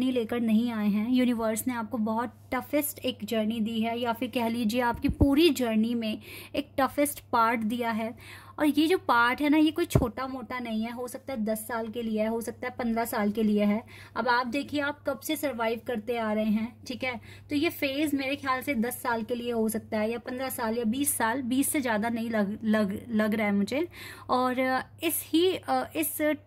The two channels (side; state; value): both; identical; correlation 1.00